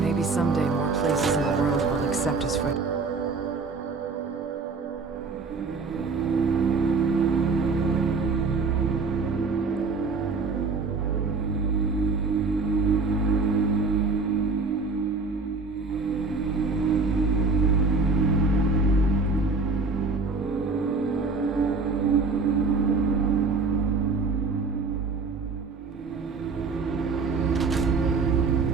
Maybe someday more places in the world will accept us for...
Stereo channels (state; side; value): quieter; left; 4.3 dB